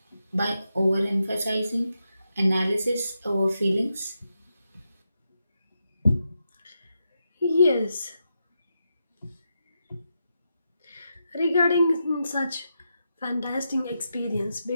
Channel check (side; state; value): both; inverted; correlation -0.86